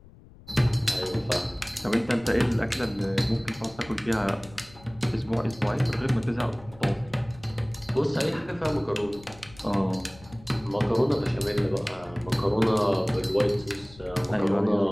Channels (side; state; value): left; noise; rumble, 22 dB below the sound